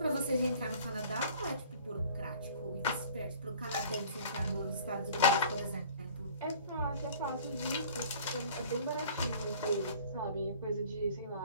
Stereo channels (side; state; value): both; inverted; correlation -0.49